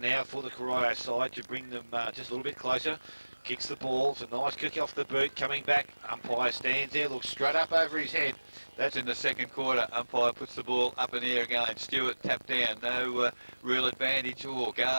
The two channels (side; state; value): both; inverted; correlation -1.00